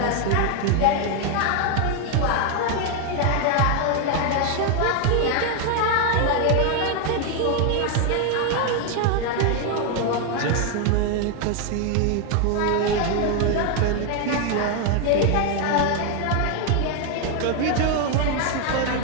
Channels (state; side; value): different; both; correlation 0.01